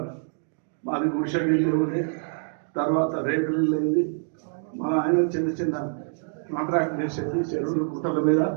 మాది గుడిసె ఇల్లు ఉండే, తర్వాత రేకులు ఇల్లు అయింది. మన ఆయన చిన్న చిన్న కాంట్రాక్ట్ చేసేది చెరువులు గుట్టల మీద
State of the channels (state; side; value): silent; left; 61 dB below the other